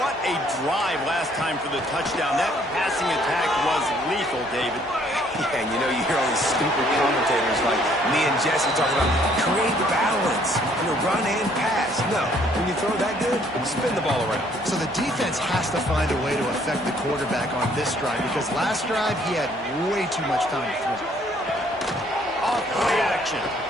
a drive last time for the touchdown. That passing attack was lethal, David. Yeah, and you know, you hear all these stupid commentators like me and Jesse talking about create balance, run and pass. No, when you throw that good, spin the ball around. So the defense has to find a way to affect the quarterback on this drive because last drive he had way too much time to throw. Off play action.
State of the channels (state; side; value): normal; both; correlation 0.63